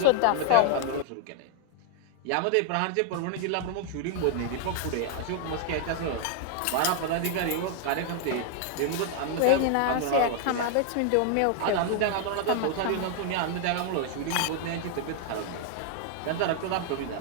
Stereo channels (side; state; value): both; different; correlation 0.00